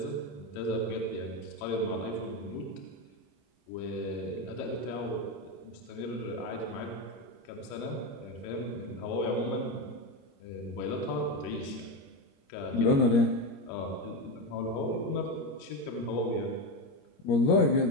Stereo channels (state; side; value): late; right; 21 ms